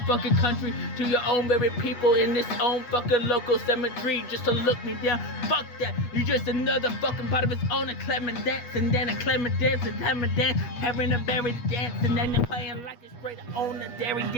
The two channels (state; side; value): late; right; 8.3 ms